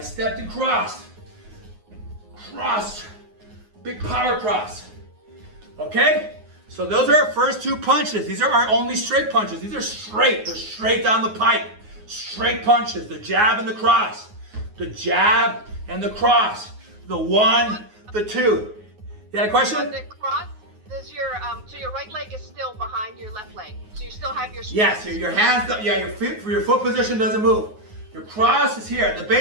stepped and crossed. Crossed. Big power cross. Okay? So those are our first two punches. These are our only straight punches. These are straight. They're straight down the pipe. Straight punches. The jab and the cross. The jab and the cross. The one, the two. You had a question? The cross, does your so your right leg is still behind your left leg. So you still have your Yes, your hands, your feet, your foot position doesn't move. Your cross is here. The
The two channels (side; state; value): left; late; 9.5 ms